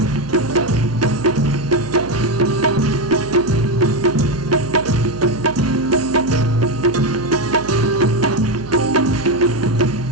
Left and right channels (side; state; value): right; noise; hum, 15 dB below the sound